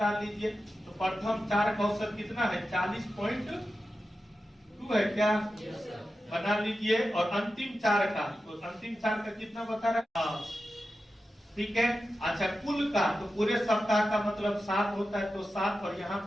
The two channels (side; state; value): both; normal; correlation 0.92